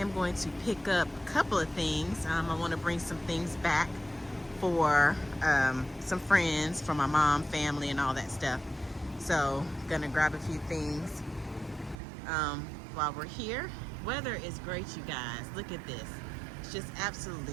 going to pick up a couple of things. I want to bring some things back for some friends, for my mom, family, and all that stuff. So gonna grab a few things while we're here. Weather is great, you guys. Look at this. It's just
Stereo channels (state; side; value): drops out; left; at 12.0 s